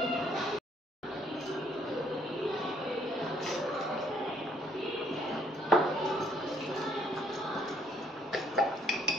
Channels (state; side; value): normal; both; correlation 0.66